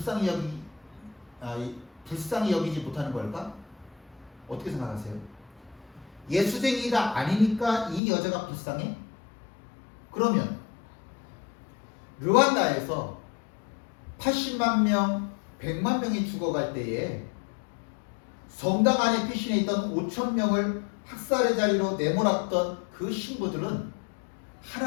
여기지 못하는 걸까? 어떻게 생각하세요? 예수쟁이가 아니니까 이 여자가 불쌍해? 그러면 르완다에서 80만 명, 100만 명이 죽어갈 때에 성당 안에 피신해 있던 5천 명을 학살의 자리로 내몰았던 그 신부들은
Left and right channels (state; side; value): drops out; right; at 8.0 s